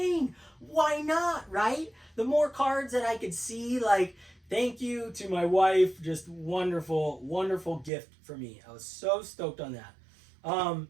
Why not, right? The more cards that I could see, like, thank you to my wife. Just wonderful, wonderful gift for me. I was so stoked on that.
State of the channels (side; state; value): left; drops out; at 7.9 s